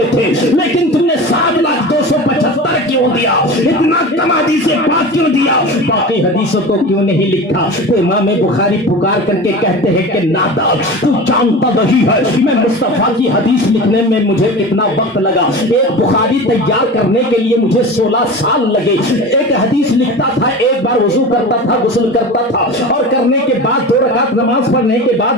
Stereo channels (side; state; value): both; normal; correlation 0.32